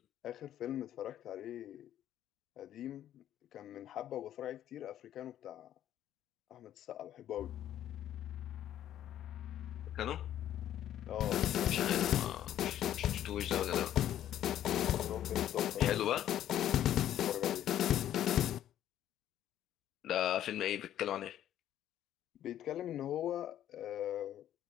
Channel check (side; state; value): right; quieter; 11.6 dB